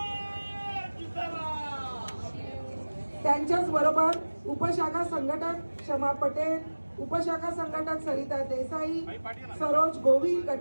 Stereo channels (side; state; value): both; inverted; correlation -1.00